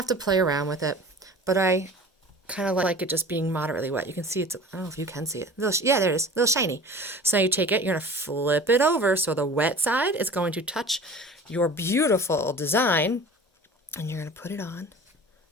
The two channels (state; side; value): normal; both; correlation 0.40